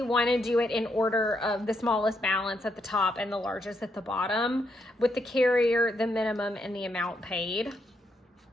want to do it in order of the smallest balance at the top and the largest at the bottom, with the carrier, the minimum, and the amount paid.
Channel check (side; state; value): both; normal; correlation 0.78